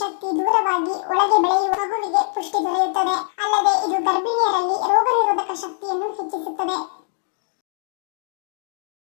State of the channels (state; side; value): silent; right; digital silence